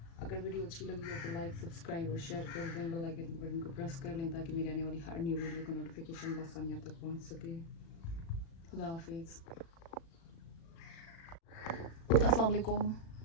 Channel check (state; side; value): late; right; 36 ms